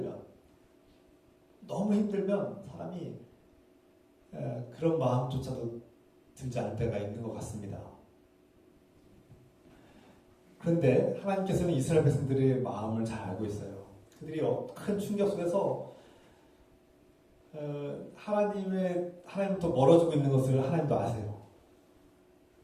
힘들면 사람이 그런 마음조차도 들지 않을 때가 있는 것 같습니다. 그런데 하나님께서는 이스라엘 백성들의 마음을 잘 알고 있어요. 그들이 큰 충격 속에서 하나님부터 멀어지고 있는 것을 하나님도 아세요.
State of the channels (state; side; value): identical; both; correlation 1.00